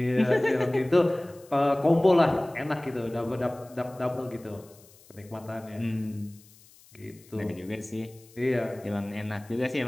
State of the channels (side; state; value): left; noise; hiss, 26 dB below the sound